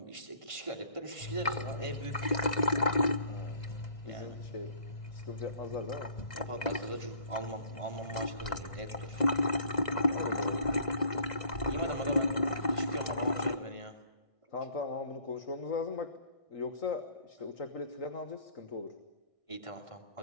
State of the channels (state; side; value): late; right; 2.0 ms